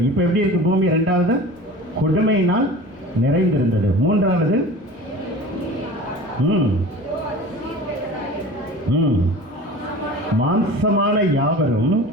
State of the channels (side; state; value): both; normal; correlation 0.38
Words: இப்போ எப்படி இருக்கு பூமி? 2வது, கொடுமையினால் நிறைந்திருந்தது. 3வது, மாம்சமான யாவரும்